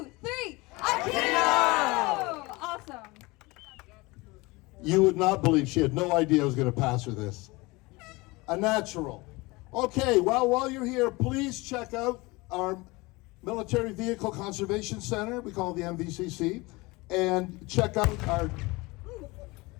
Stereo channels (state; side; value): quieter; right; 23.5 dB